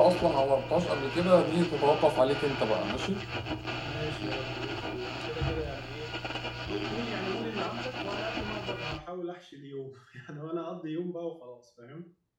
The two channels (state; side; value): identical; both; correlation 1.00